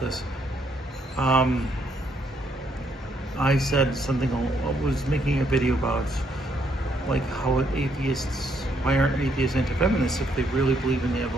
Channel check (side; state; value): both; normal; correlation 0.72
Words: this. I said something, I was making a video about like how atheists, why aren't atheists anti-feminists? If they really believe in the